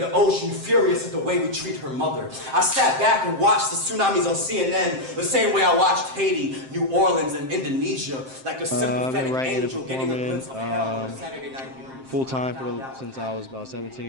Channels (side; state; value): left; late; 7.6 ms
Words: ocean furious at the way we treat her mother. I sat back and watched the tsunamis on CNN the same way I watched Haiti, New Orleans, and Indonesia, like a sympathetic angel getting a glimpse of hell on a Saturday night. Full-time since I was about